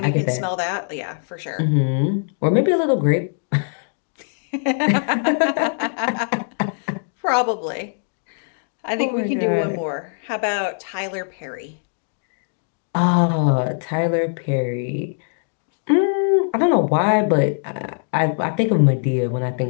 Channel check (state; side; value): silent; right; digital silence